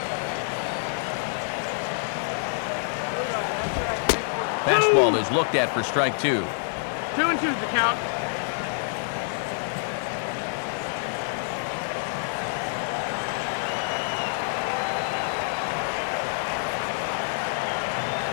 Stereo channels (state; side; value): silent; right; digital silence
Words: Fastball is looked at for strike 2. 2-2 the count.